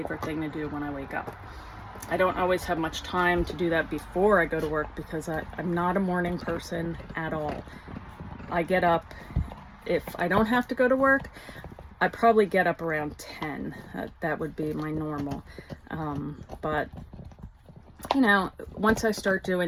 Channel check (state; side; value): identical; both; correlation 1.00